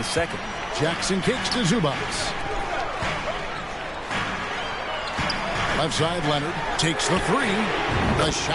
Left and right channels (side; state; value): both; identical; correlation 1.00